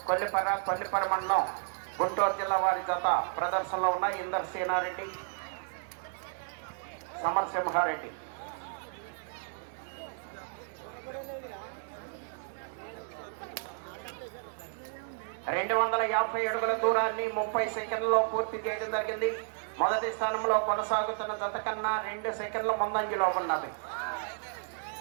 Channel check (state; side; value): silent; left; digital silence